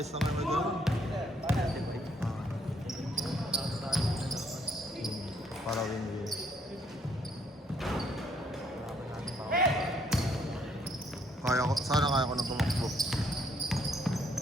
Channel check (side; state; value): both; normal; correlation 0.68